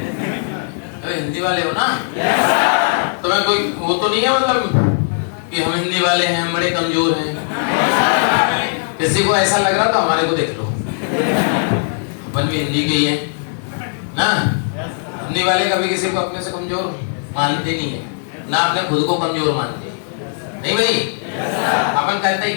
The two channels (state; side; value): silent; right; digital silence